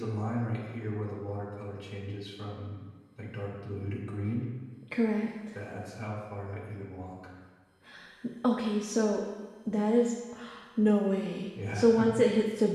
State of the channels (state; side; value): identical; both; correlation 1.00